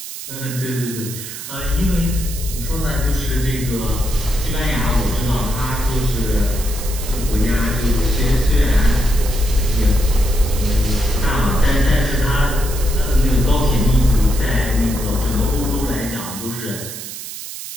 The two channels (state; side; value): noise; right; hiss, 10 dB below the sound